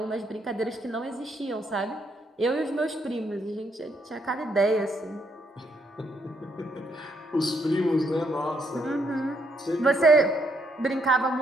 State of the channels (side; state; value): both; normal; correlation 0.74